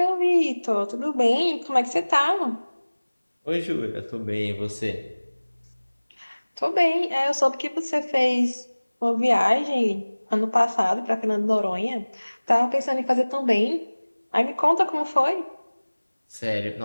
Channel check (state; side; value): inverted; both; correlation -1.00